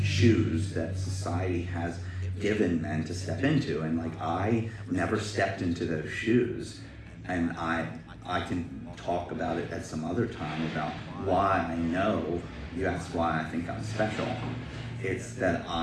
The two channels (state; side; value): identical; both; correlation 1.00